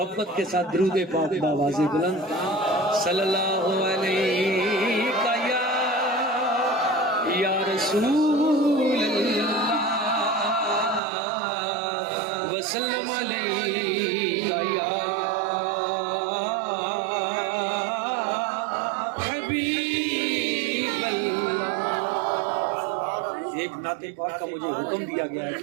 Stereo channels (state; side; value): drops out; left; at 11.0 s